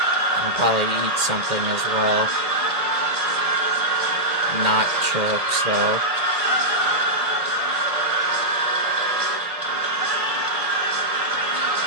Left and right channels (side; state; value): left; late; 2.1 ms